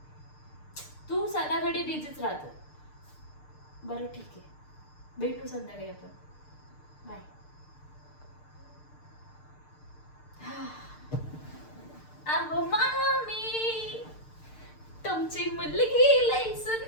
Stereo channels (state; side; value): late; right; 6.6 ms